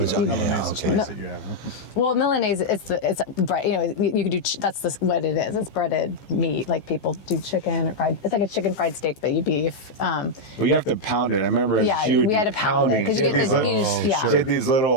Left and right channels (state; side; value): late; right; 15 ms